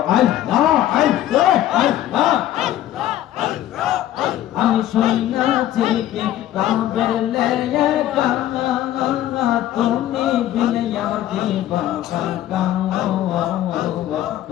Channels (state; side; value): quieter; right; 12.8 dB